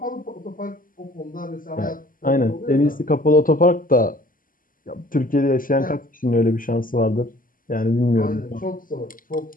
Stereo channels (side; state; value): right; late; 0.41 ms